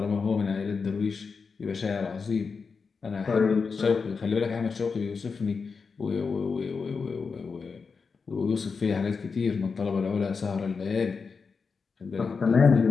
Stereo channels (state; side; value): quieter; right; 5.1 dB